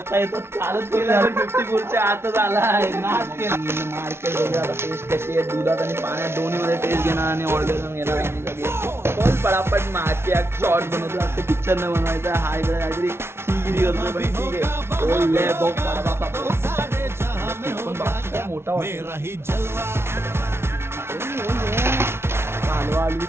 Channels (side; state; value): left; late; 0.12 ms